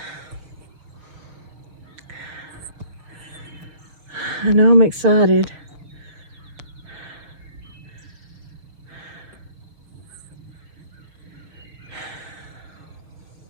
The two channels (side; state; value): left; late; 6.4 ms